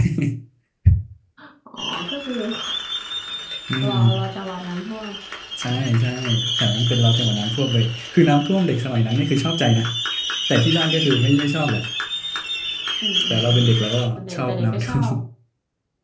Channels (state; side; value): identical; both; correlation 1.00